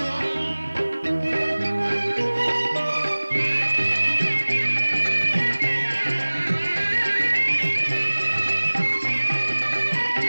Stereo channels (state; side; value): inverted; both; correlation -1.00